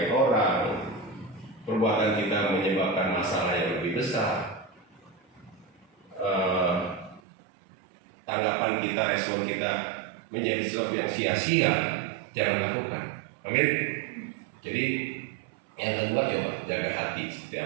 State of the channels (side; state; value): left; drops out; at 7.2 s